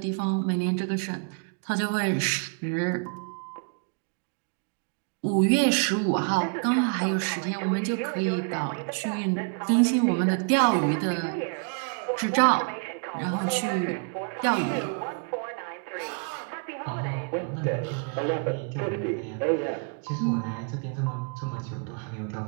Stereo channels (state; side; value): quieter; left; 39.8 dB